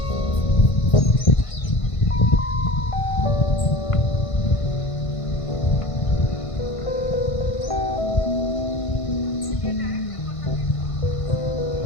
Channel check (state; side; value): late; right; 1.5 ms